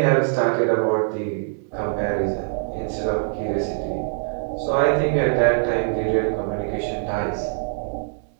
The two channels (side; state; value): left; silent; digital silence